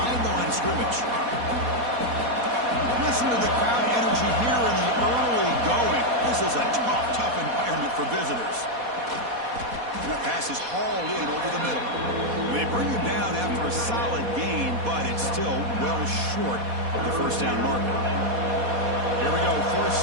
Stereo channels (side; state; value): left; late; 4.2 ms